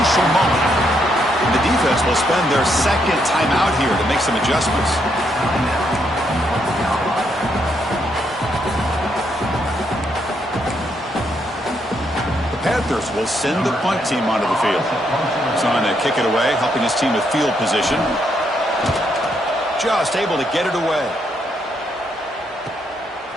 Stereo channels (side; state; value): both; normal; correlation 0.76